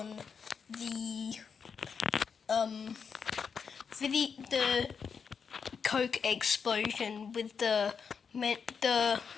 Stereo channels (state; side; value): quieter; right; 6.2 dB